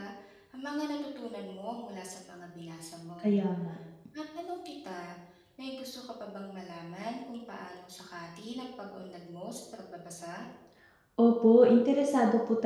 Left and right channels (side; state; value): both; identical; correlation 1.00